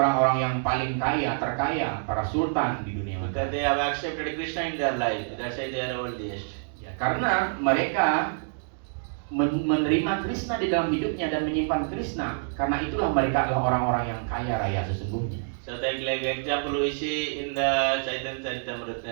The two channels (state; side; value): silent; left; digital silence